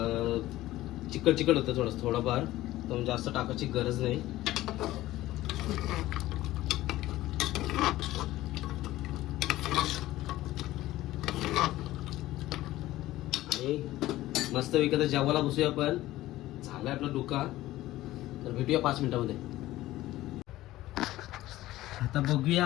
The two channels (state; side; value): quieter; right; 16.0 dB